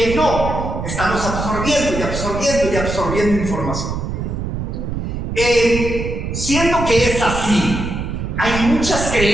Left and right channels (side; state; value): right; noise; rumble, 4 dB below the sound